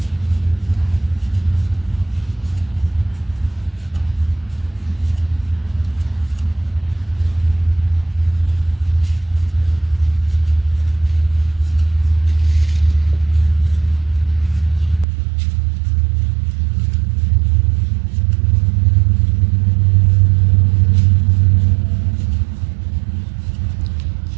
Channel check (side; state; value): left; drops out; at 15.1 s